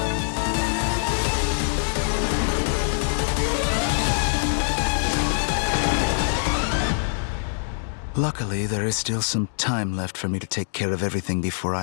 Luckily, there is still some time left for me to take care of everything before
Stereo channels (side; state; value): right; silent; digital silence